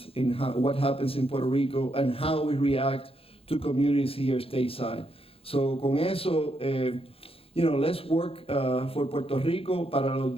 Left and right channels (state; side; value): late; right; 0.27 ms